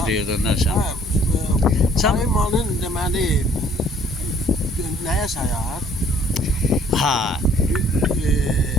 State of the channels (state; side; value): normal; both; correlation 0.58